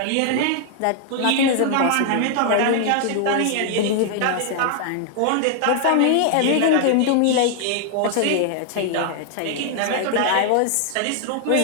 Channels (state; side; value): different; both; correlation 0.00